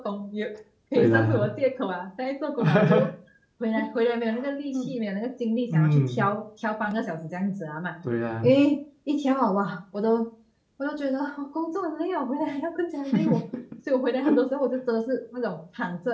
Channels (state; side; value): identical; both; correlation 1.00